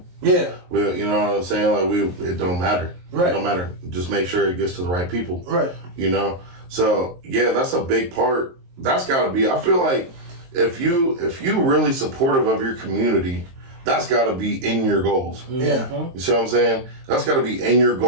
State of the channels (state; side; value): late; left; 23 ms